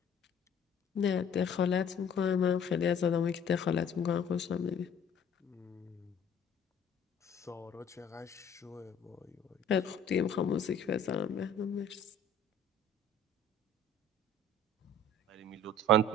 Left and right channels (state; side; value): normal; both; correlation 0.53